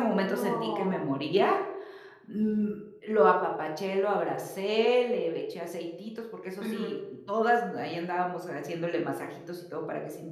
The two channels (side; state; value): both; identical; correlation 1.00